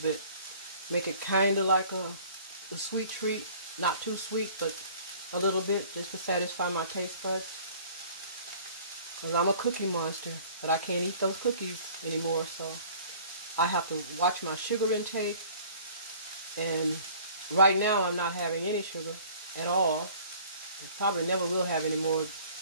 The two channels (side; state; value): both; inverted; correlation -0.50